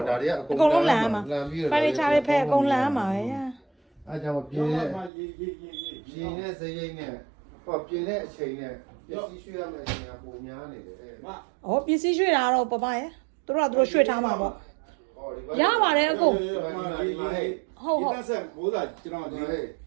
့ဒါတွေကအ အကုန်လုံးလှန်ရမှာ လှန်ပြီးတော့ ဖိုင်နေချာတွေဖဲအကုန်လှန်ရမှာပဲ အဲ့ကြောင့်ပြင်းတဲ့ပြင်းတဲ့စရိတ်နဲ့ဟောပြင်းတဲ့အချိန်နဲ့ပစ္စည်းရွှေ့ရမယ့်အချိန်ကပုံများနေတယ် မ ။ဩပစ္စည်းရွှေ့တာတော့ပပရဲ့။သူတို့ကသူတို့ရွှေ့ထားမှာပေါ့။ရပါတယ်အကုန် ဒီတက်ဆက်ဘိုးသားကျွန်တော်ဒီ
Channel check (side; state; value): left; drops out; at 5.1 s